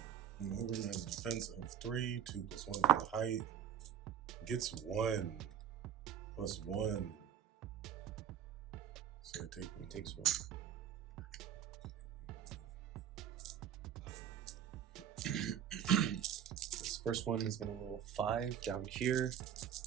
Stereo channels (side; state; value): left; quieter; 9.3 dB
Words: Mogrim has a defense of 3, 2 plus 1 for the height. Gets 1 plus 1. So I take 1. He takes 1. This first one is going to roll 5 down here.